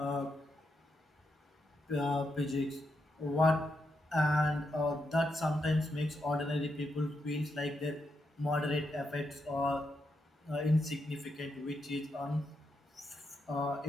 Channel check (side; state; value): both; normal; correlation 0.83